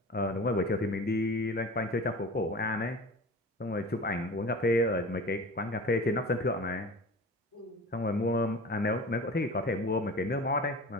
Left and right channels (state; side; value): normal; both; correlation 0.37